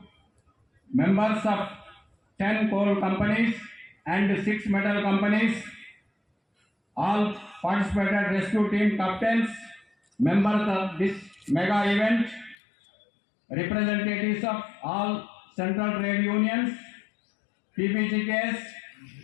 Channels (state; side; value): drops out; right; at 12.6 s